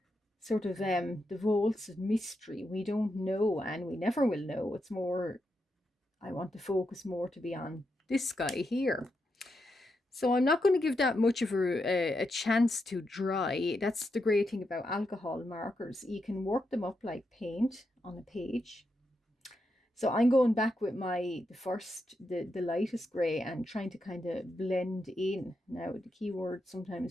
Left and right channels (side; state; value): both; normal; correlation 0.84